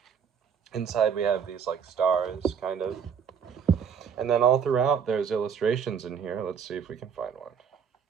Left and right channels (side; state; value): left; quieter; 7.2 dB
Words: Inside we have these like stars, kind of. And then all throughout there's illustrations in here. Let's see if we can find one.